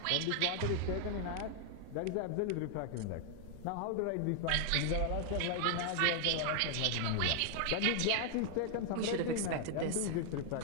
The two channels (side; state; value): both; different; correlation 0.00